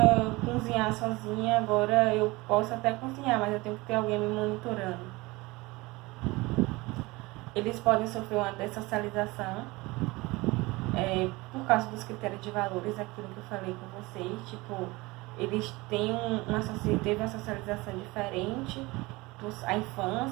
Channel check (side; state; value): left; quieter; 22.4 dB